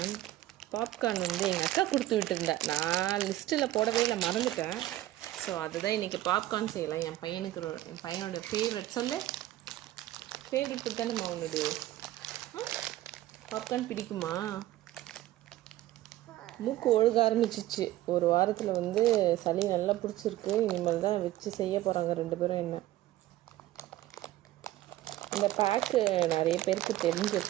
பாப்கார்ன் வந்து எங்கள் அக்கா கொடுத்து விட்டுருந்தேன். நான் லிஸ்ட்டில் போடவே இல்லை, மறந்துட்டேன். ஸோ அதுதான் இன்றைக்கி பாப்கார்ன் செய்யலாம். என் பையனோட ஃபேவரட் சொல்லு. ஃபேவரட் ஃபுட் தானே உன்னோட பாப்கார்ன் பிடிக்குமா? மூக்கு ஒழுக ஆரம்பிச்சிச்சு. ஒரு வாரத்தில் வந்து சளி நல்லா பிடிச்சிருக்கு. இனிமேல் தான் வச்சு செய்ய போகிறாங்க 2 பேரும். என்ன இந்த பேக்கு நிறைய பேருக்கு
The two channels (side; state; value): left; quieter; 15.1 dB